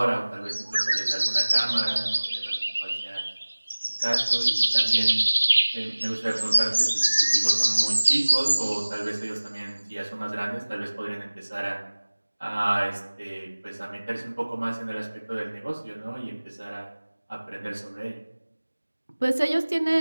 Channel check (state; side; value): inverted; both; correlation -1.00